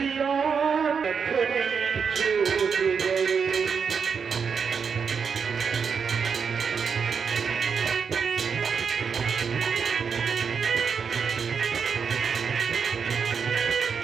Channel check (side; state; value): left; quieter; 6.2 dB